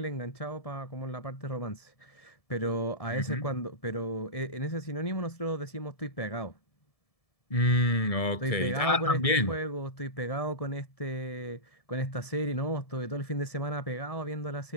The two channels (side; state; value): right; late; 1.7 ms